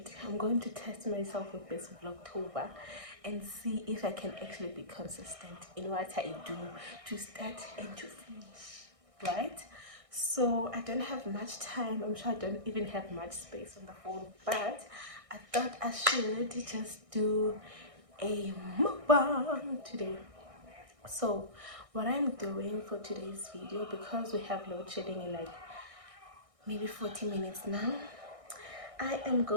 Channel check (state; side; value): late; left; 1.6 ms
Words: I'm going to test myself with this Vlogtober and see if I can actually be consistent in what I do to start and to finish, right? So I don't have much time. I'm sure I don't even have much space on the phone, but I thought I should just do a mukbang today. So what I'm doing for today's video, because we have load shedding in like maybe 40 minutes now, I am